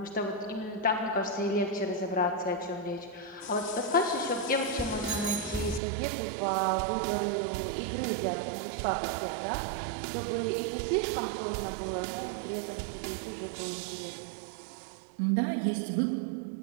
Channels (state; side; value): drops out; left; at 5.8 s